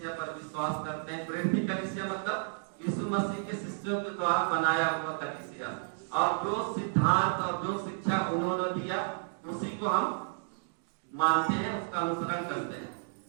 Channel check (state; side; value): silent; left; digital silence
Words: पर विश्वास करते हैं। प्रेरित कलीसिया मतलब यीशु मसीह के शिष्यों के द्वारा बनाया हुआ कलीसिया, और जो सिद्धांत और जो शिक्षा उन्होंने दिया उसी को हम मानते हैं, उसका अनुसरण करते हैं।